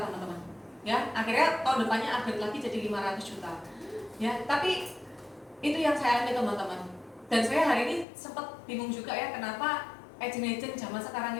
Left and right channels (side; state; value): right; drops out; at 8.1 s